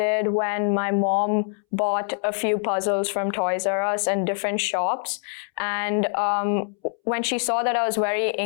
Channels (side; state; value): right; silent; 62 dB below the other